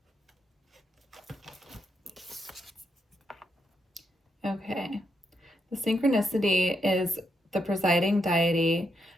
Okay, The synchronicity is the presiding deity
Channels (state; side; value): normal; both; correlation 0.81